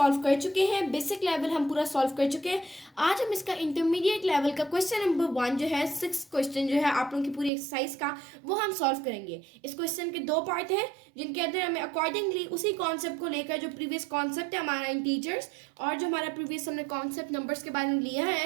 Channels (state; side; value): drops out; left; at 7.5 s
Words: कर चुके हैं, बेसिक लेवल हम पूरा सॉल्व कर चुके हैं। आज हम इसका इंटरमीडिएट लेवल का क्वेश्चन नंबर 1 जो है 6 क्वेश्चन जो है आप लोगों की पूरी एक्सरसाइज का वो हम सॉल्व करेंगे। इस क्वेश्चन के दो पार्ट हैं जिनके अंदर हमें अकॉर्डिंगली उसी कॉन्सेप्ट को लेकर जो प्रीवियस कॉन्सेप्ट है हमारा इंटीजर्स और जो हमारा प्रीवियस हमने कॉन्सेप्ट नंबर्स के बारे में लिया